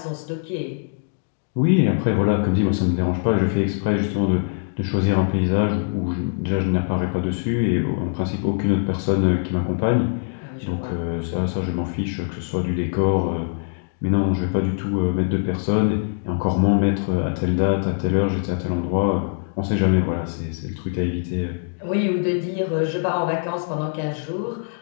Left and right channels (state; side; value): silent; right; digital silence